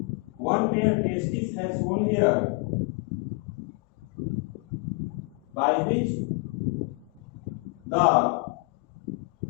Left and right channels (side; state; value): right; quieter; 30.6 dB